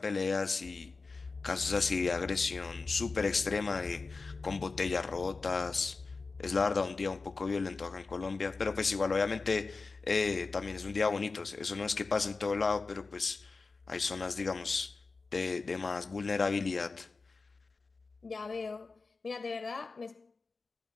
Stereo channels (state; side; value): quieter; right; 4.1 dB